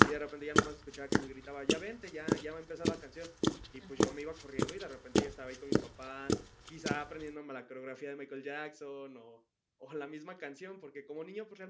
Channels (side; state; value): both; identical; correlation 1.00